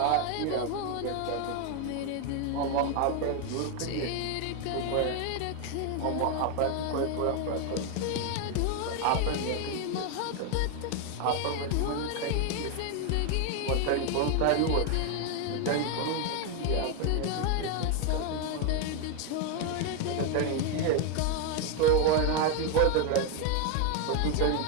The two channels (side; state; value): both; different; correlation 0.01